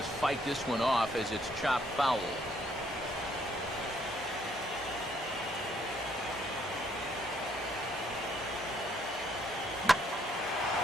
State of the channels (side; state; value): both; normal; correlation 0.68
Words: fight this one off as it's chopped foul.